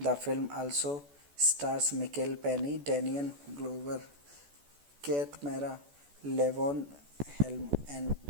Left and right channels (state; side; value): late; left; 14 ms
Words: film also stars Michael Penny, Daniel Glover, Kate Mara, Levon Helm, and